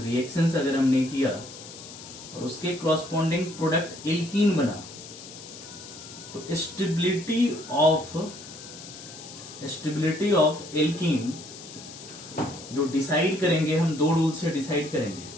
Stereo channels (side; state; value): left; noise; hiss, 15 dB below the sound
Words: अगर हमने किया और उसके क्रॉसपॉन्डिंग प्रोडक्ट एल्कीन बना, तो स्टेबिलिटी ऑफ एल्कीन जो डिसाइड करेंगे, हम दो रूल से डिसाइड करेंगे।